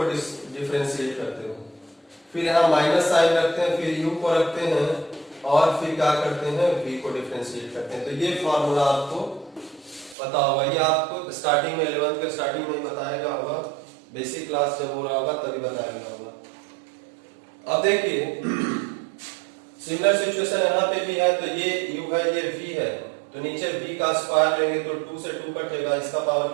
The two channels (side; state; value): left; drops out; at 10.2 s